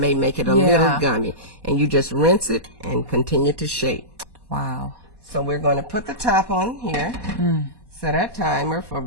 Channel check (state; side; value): late; right; 1.1 ms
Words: make it a little gummy. And you just rinse it and continue to shape. Wow. So we're going to put the top on here, set our timer for